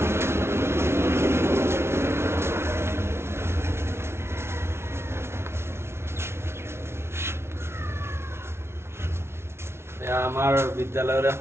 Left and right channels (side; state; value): left; late; 0.12 ms